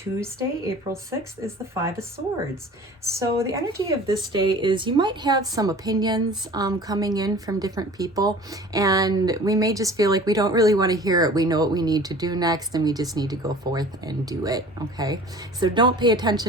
April 6th, is the Five of Swords. So the energy of this day is you might have some opinions coming in from different people, and we may just feel like we don't really want to hear it. We know what we need to do next, and we just need to go forth and do it, okay? So don't pay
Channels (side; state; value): both; normal; correlation 0.44